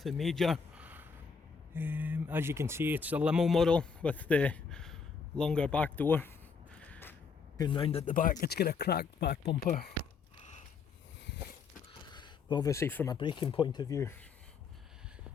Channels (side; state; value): right; quieter; 5.5 dB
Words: major. As you can see, it's a limo model with the longer back door. Going round at the back, it's got a cracked back bumper. But obviously from a braking point of view,